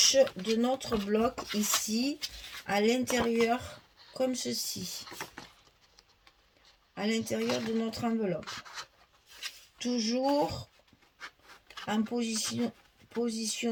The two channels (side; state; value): both; identical; correlation 1.00